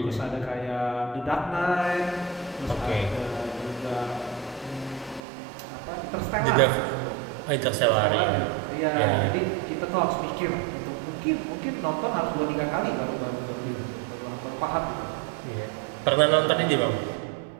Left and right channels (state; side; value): drops out; left; at 5.2 s